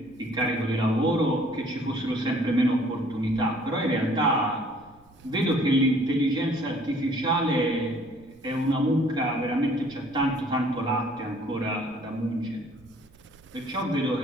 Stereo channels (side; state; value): right; noise; rumble, 28 dB below the sound